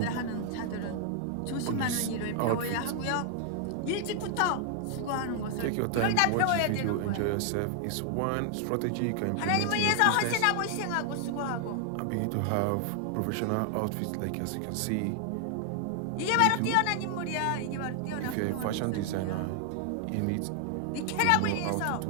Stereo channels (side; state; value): both; different; correlation 0.00